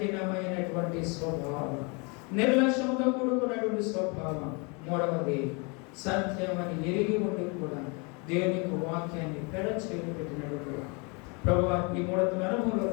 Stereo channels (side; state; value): right; quieter; 31.8 dB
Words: స్వభావం, నిర్లక్ష్యంతో కూడుకున్నటువంటి స్వభావం. మూడవది, సత్యమని ఎరిగి ఉండి కూడా దేవుని యొక్క వాక్యాన్ని పెడ చేసి పెట్టినటువంటి ప్రభువా, ఈ 3 అనుభవంలో